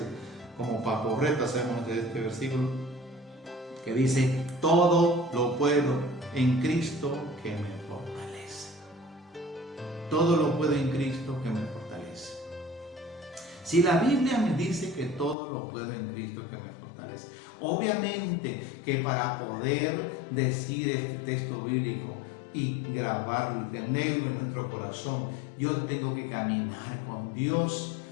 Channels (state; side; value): drops out; right; at 15.4 s